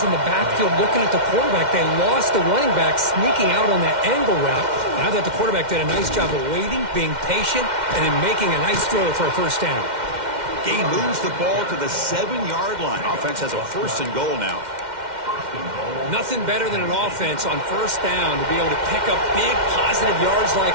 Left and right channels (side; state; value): left; late; 2.1 ms